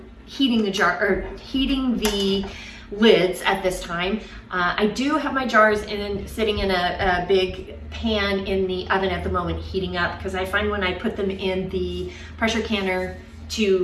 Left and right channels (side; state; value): both; identical; correlation 1.00